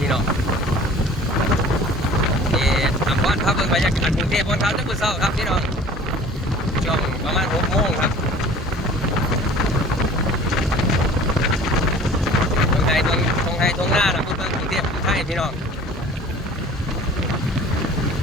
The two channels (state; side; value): normal; both; correlation 0.46